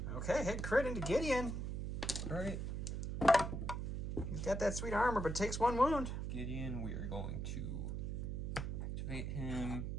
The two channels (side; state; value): right; noise; hum, 2 dB below the sound